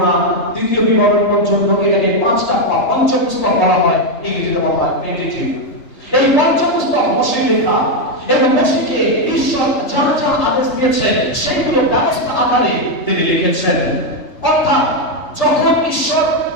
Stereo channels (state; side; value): late; right; 3.3 ms